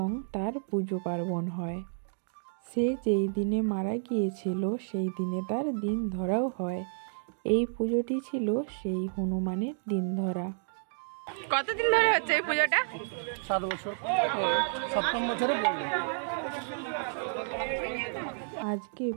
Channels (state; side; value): silent; left; digital silence